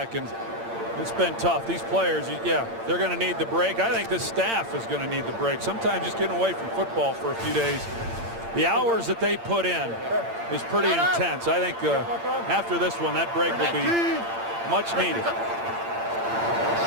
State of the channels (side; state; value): left; late; 8.8 ms